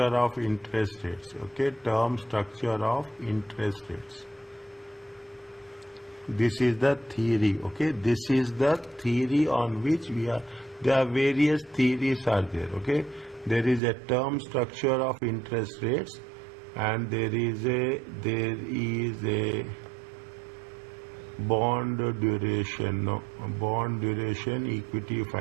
of interest rates. Okay, term structure of interest rates. This is the theory. Okay, this is the theory on which we are. There are various theories are there. Okay, there is a term structure of interest rates, and there is a bond duration. No, bond duration equity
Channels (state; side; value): drops out; left; at 13.8 s